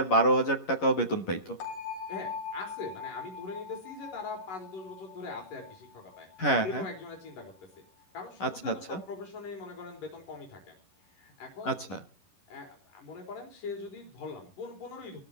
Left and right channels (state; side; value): late; right; 11 ms